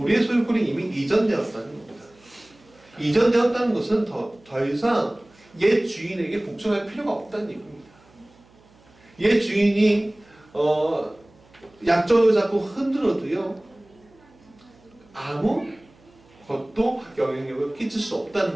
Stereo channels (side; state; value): right; noise; hum, 29 dB below the sound